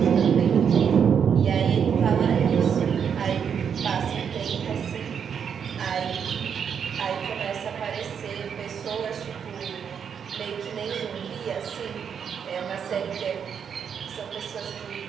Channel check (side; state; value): left; quieter; 7.4 dB